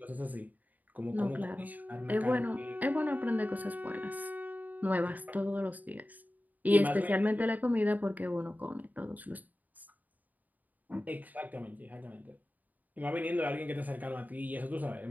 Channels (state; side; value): late; left; 0.080 ms